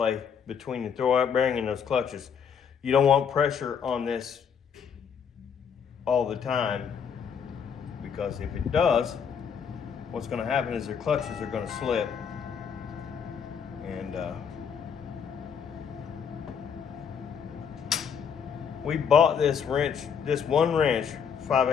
between the throwout bearing and those clutches. You don't want pressure on this all the time, because if it does, what's going to happen is their clutches are going to slip. And we bought this wrench, this one wrench,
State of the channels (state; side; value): quieter; right; 7.2 dB